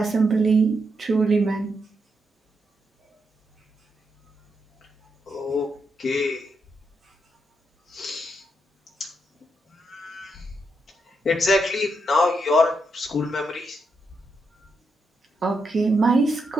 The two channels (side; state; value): both; normal; correlation 0.82